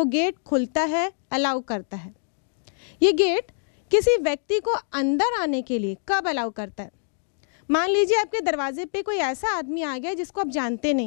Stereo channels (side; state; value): right; silent; digital silence